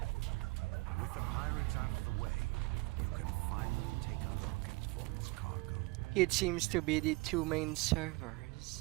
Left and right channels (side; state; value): left; quieter; 24.3 dB